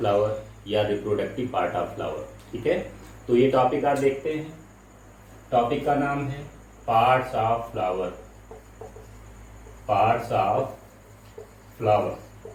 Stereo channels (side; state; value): both; identical; correlation 1.00